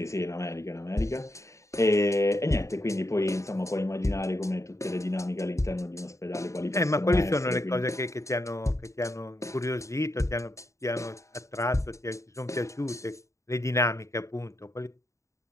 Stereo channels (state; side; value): late; right; 0.15 ms